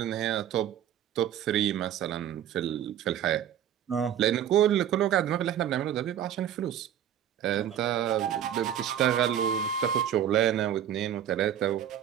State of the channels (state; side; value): quieter; left; 10.3 dB